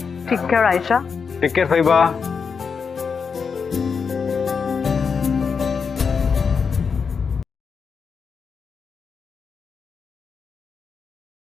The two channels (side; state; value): right; quieter; 5.8 dB